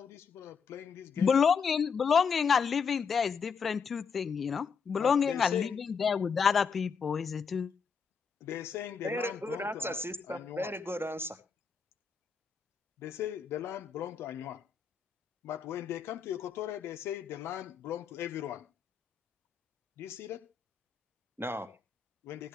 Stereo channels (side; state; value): right; quieter; 6.0 dB